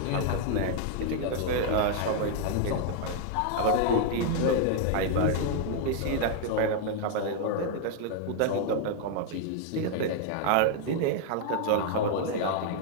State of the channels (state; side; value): different; both; correlation 0.00